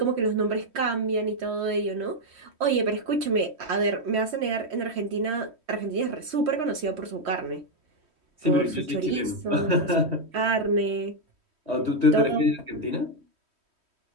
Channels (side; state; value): left; late; 3.1 ms